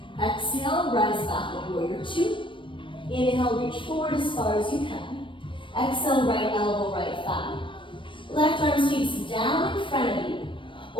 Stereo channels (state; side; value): late; right; 0.25 ms